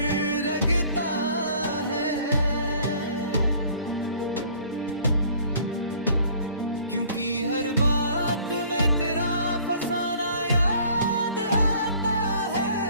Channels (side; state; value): both; inverted; correlation -0.54